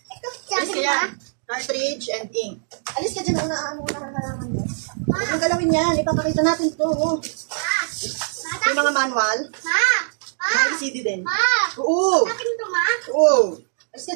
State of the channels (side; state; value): left; silent; digital silence